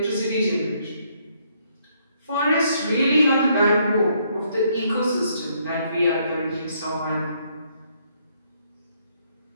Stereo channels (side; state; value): both; inverted; correlation -0.71